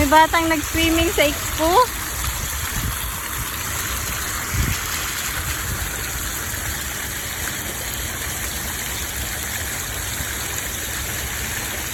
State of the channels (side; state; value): both; identical; correlation 1.00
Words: batang nag-swimming sa expo.